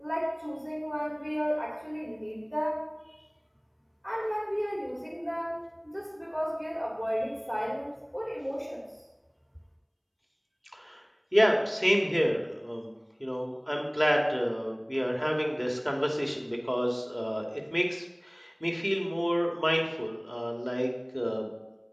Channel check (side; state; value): both; identical; correlation 1.00